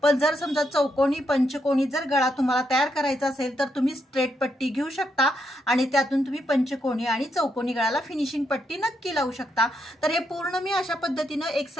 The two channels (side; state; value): both; normal; correlation 0.79